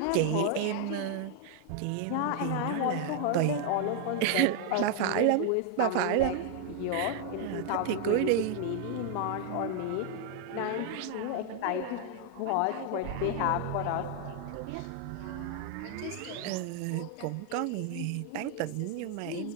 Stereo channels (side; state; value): both; different; correlation 0.00